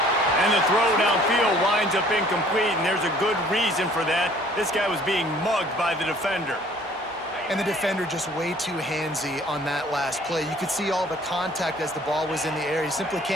And the throw downfield winds up incomplete, and there's a good reason for that. This guy was being mugged by the defender. And the defender just way too handsy on that last play. You could see all the contact as the ball was in the air. He simply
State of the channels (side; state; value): both; normal; correlation 0.55